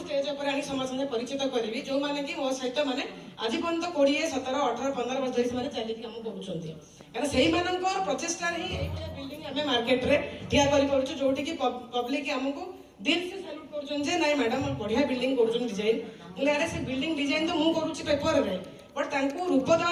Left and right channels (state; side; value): identical; both; correlation 1.00